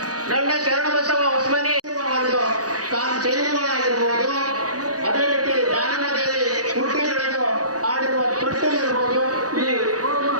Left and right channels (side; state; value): left; late; 0.68 ms